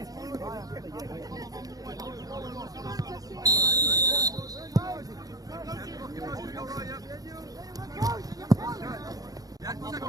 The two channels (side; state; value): left; late; 0.18 ms